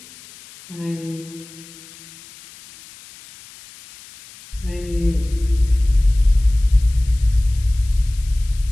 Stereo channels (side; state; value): left; noise; hiss, 21 dB below the sound